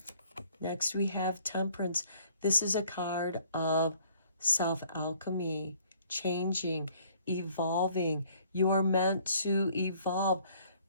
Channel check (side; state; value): both; inverted; correlation -0.60